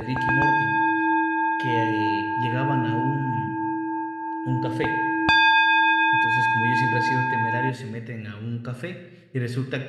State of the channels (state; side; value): identical; both; correlation 1.00